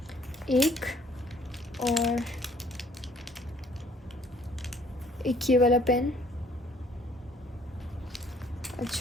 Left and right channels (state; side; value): normal; both; correlation 0.59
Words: एक, और एक ये वाला पेन।